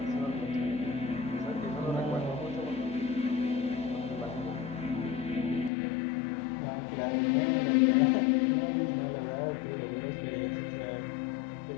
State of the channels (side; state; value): right; drops out; at 5.7 s